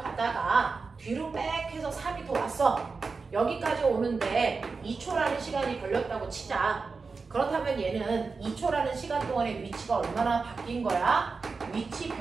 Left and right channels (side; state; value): left; quieter; 4.5 dB